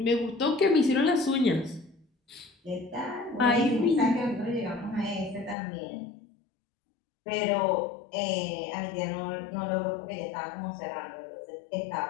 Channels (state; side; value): drops out; right; at 5.6 s